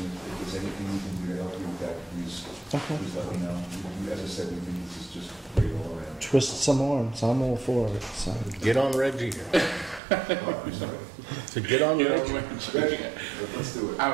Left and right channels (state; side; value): drops out; left; at 10.0 s